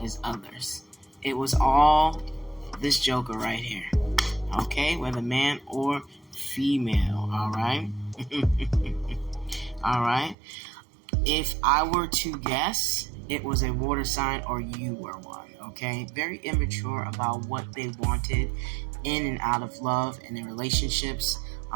as others. It was all this joker right here. Okay, whether man or female, alright? Alright. If I were to guess, it was a water sign or you were one, okay? Very immature about what they wanted in and out of love and in relationships,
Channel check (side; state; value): left; drops out; at 10.4 s